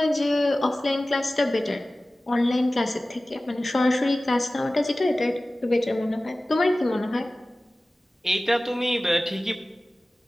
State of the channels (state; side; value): normal; both; correlation 0.97